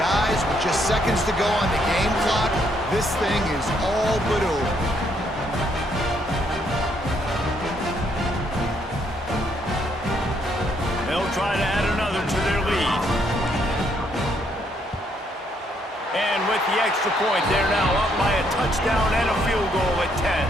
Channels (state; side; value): normal; both; correlation 0.72